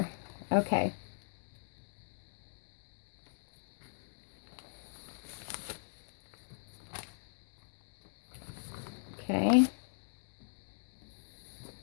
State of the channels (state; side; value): silent; right; digital silence